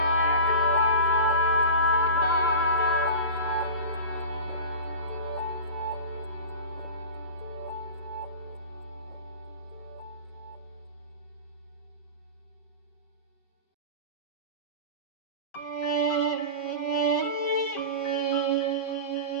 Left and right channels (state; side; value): late; right; 7.0 ms